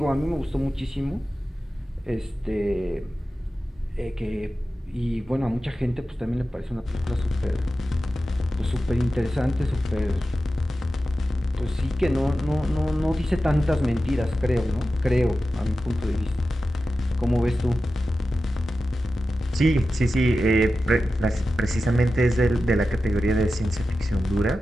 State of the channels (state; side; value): normal; both; correlation 0.93